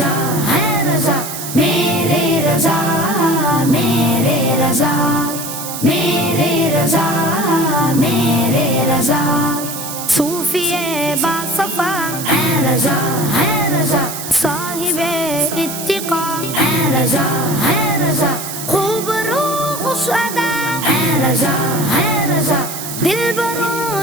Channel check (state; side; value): noise; right; hiss, 8 dB below the sound